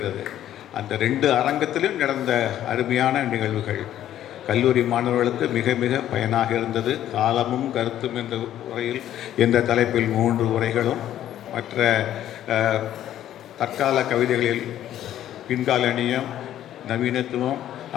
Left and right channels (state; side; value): quieter; right; 11.8 dB